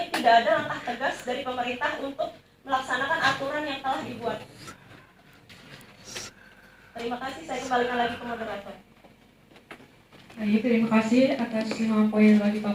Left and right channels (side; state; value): both; identical; correlation 1.00